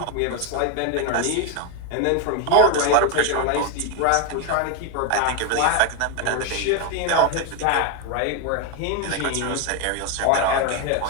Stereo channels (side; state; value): both; different; correlation 0.01